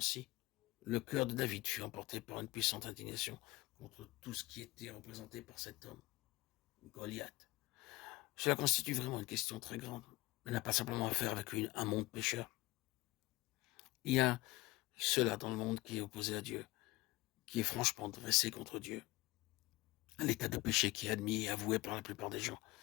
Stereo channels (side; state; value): right; quieter; 20.5 dB